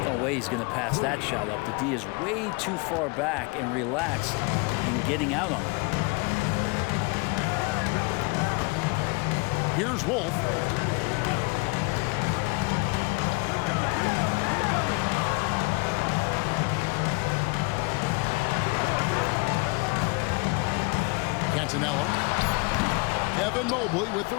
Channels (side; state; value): right; quieter; 27.7 dB